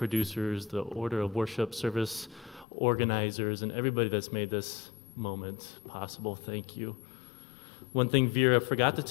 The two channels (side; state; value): right; drops out; at 2.7 s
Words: the order of worship service organizers, and everybody that's made this moment possible. Thank you. One thing Vera forgot to